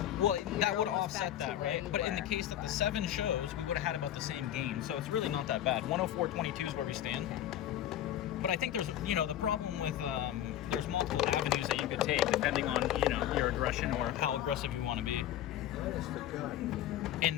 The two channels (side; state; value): right; quieter; 11.8 dB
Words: Well, that would have offset that, right? But in the case that the 7 shows, we would have had about the same gain. So it's really not that bad. 104.22 is where we stand. But I think there's, the problem with there's multiple avenues that you could take depending on, your aggression or how aggressive you want to be. And